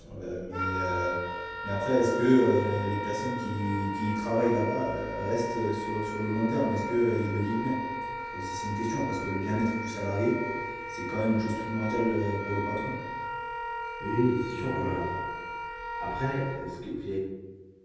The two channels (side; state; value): both; identical; correlation 1.00